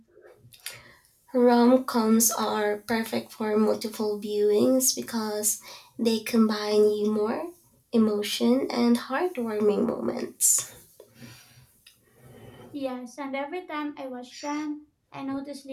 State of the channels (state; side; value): identical; both; correlation 1.00